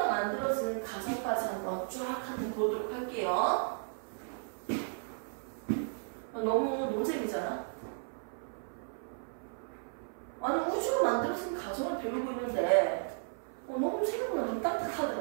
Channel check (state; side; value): silent; left; 55 dB below the other